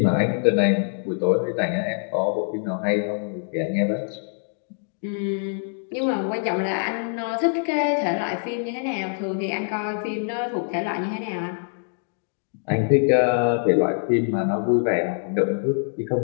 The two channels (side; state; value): right; silent; digital silence